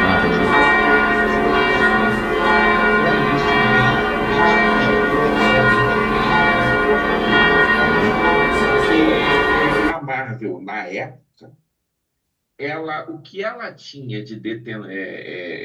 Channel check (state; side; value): identical; both; correlation 1.00